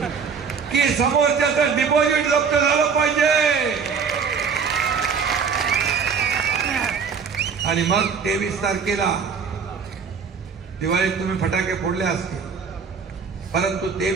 की समोरच्याचं डिपॉझिट जप्त झालं पाहिजे. आणि मग 23 तारखेला दिवाळीत तुम्ही फटाके फोडले असतील, परंतु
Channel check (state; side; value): quieter; left; 5.9 dB